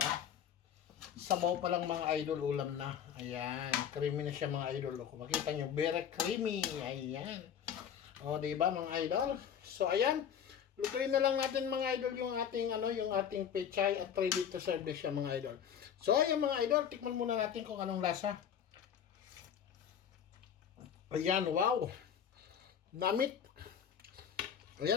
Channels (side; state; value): right; quieter; 8.7 dB